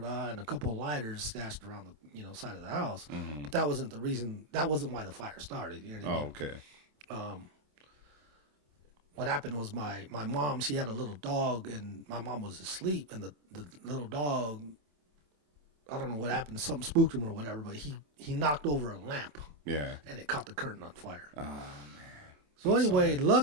a couple of lighters stashed around the, side of the house. But that wasn't the reason. That wasn't why the fire started. You know what I mean? Okay. What happened was my mom, she had a little dog, and my mom was asleep, and the little dog, I don't know what happened, something spooked him or whatever, but he knocked over a lamp. Yeah. And it caught the curtain on fire. Oh man. So anyway,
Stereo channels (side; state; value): left; late; 27 ms